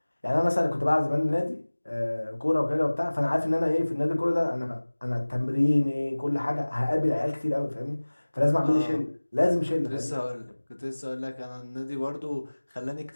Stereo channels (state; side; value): inverted; both; correlation -1.00